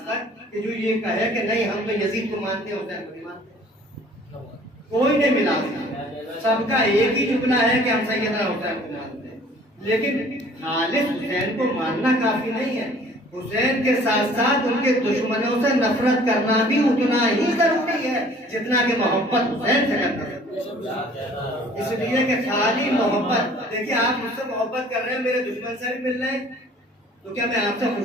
تک کہ جو یہ کہے کہ نہیں ہم تو یزید کو مانتے ہیں حسین کو نہیں مانتے، کوئی نہیں ملا، سب کا ایک ہی جملہ ہے کہ ہم سیدنا حسین کو مانتے ہیں۔ لیکن خالص حسین کو ماننا کافی نہیں ہے، حسین کے ساتھ ساتھ ان کے دشمنوں سے نفرت کرنا بھی اتنا ہی ضروری ہے جتنا کہ محبت حسین سے کرنا ہے۔ اس لیے کہ خالی محبت، دیکھیے آپ مجھ سے محبت کر رہے ہیں، میرے دشمن سے بھی مل رہے ہیں تو کیا میں آپ سے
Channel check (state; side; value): normal; both; correlation 0.53